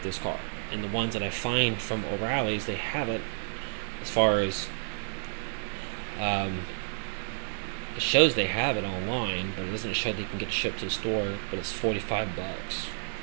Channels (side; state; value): left; silent; 58 dB below the other